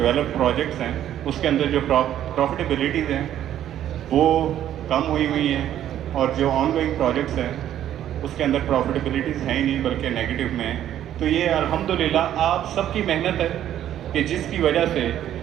پروجیکٹس ہیں اس کے اندر جو پروفیٹیبلٹیز ہیں وہ کم ہوئی ہیں, اور جو آن گوئنگ پروجیکٹس ہیں اس کے اندر پروفیٹیبلٹیز ہیں ہی نہیں بلکہ نیگیٹو میں ہیں. تو یہ الحمدللہ آپ سب کی محنت ہے کہ جس کی وجہ سے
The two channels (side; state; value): left; quieter; 11.3 dB